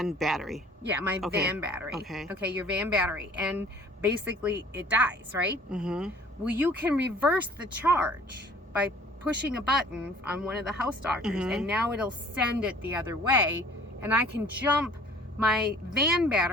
battery. Yeah, my van battery. Okay. Okay, your van battery. And basically it dies, right? Mm-hmm. Well, you can reverse the charge by pushing a button on one of the house doctors, and now it'll send it the other way, and I can jump my van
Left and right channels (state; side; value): normal; both; correlation 0.51